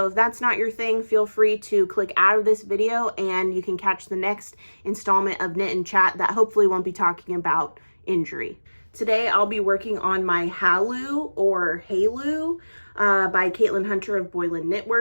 if that's not your thing, feel free to click out of this video and you can catch the next installment of Knit and Chat that hopefully won't be talking about injury. Today, I'll be working on my Halu or Halu by Caitlin Hunter of Boylan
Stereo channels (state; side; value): inverted; both; correlation -1.00